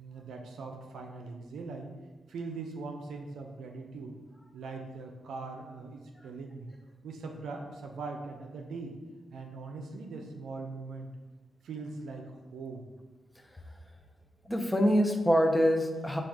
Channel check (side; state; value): both; normal; correlation 0.88